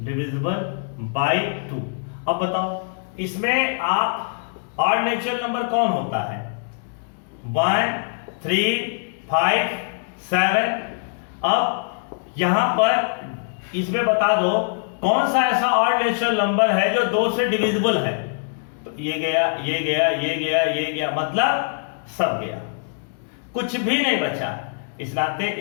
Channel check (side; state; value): right; silent; digital silence